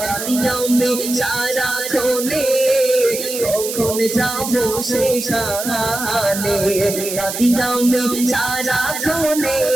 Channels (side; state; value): right; noise; hiss, 6 dB below the sound